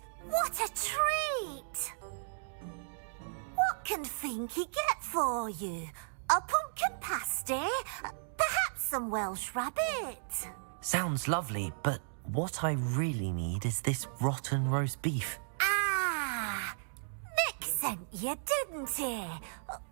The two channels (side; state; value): left; silent; digital silence